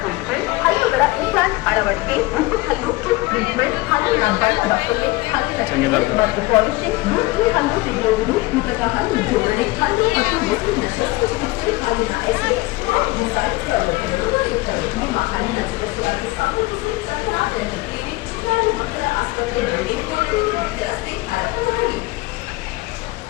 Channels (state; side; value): quieter; right; 21.1 dB